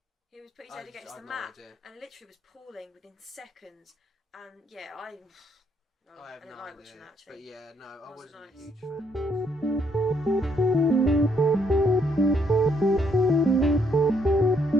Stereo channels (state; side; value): normal; both; correlation 0.71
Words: He was putting his head against the mat and literally was pooling within seconds. And yeah, I didn't like watching that actually. But yeah, no, I wasn't nice. a huge